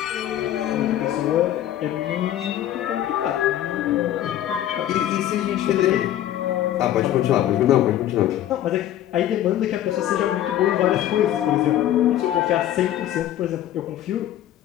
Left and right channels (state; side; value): quieter; right; 12.2 dB